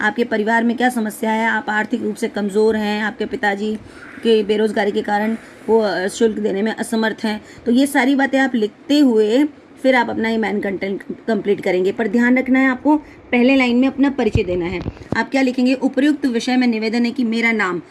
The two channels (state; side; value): identical; both; correlation 1.00